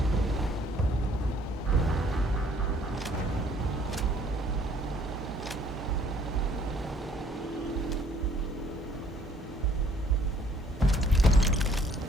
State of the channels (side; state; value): both; normal; correlation 0.61